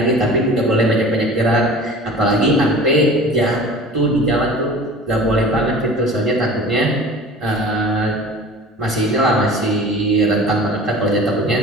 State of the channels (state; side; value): normal; both; correlation 0.41